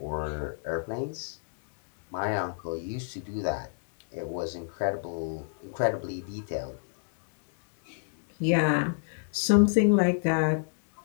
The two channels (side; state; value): right; silent; digital silence